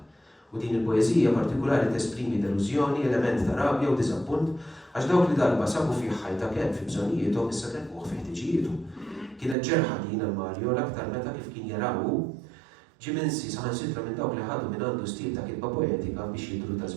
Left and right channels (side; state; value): left; drops out; at 9.6 s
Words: U din il-poeżija partikolari tesprimi delużjoni, element ta' rabja u diżappunt għax dawk li darba sabu fih ħajta kemm fi bżonijietom issa telquh fi ħtiġijietu. Kienet ġerħa din għal-Mario l-aktar meta kif kien jarawu ġiminsi saħansitra minn dawk li ħadu minn għandu stil ta' kitba poetika biex jidru ta'